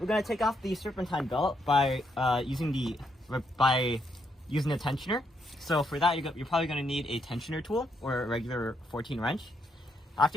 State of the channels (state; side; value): normal; both; correlation 0.77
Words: going to take off the serpentine belt by using a tensioner. So for that, you're probably going to need a tensioner tool or a regular 14 wrench.